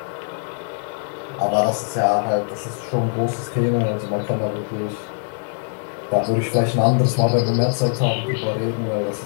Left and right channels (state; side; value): silent; right; digital silence